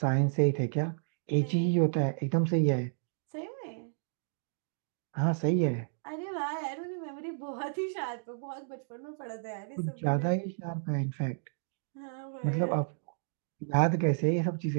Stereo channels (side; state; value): left; silent; digital silence